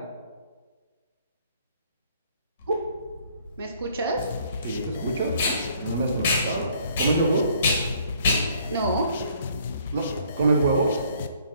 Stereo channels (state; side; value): inverted; both; correlation -0.62